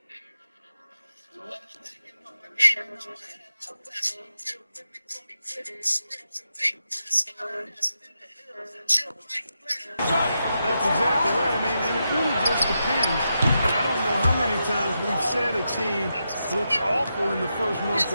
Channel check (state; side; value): inverted; both; correlation -0.86